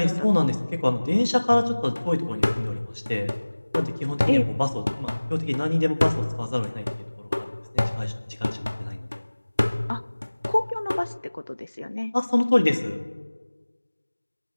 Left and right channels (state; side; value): inverted; both; correlation -1.00